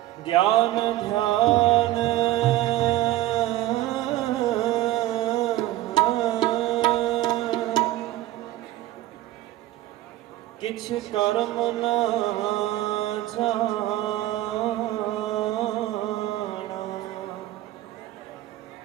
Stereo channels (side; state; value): left; quieter; 15.5 dB